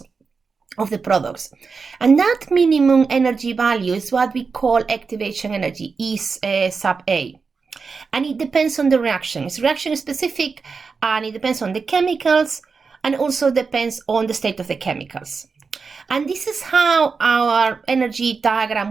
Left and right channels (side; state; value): left; quieter; 4.9 dB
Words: of the products. And that minimum energy value is what we call activation energy, E sub A. And it depends on the reaction. It's reaction specific, and it depends on the chemicals, and also depends on the state of the chemicals. And this is how our energy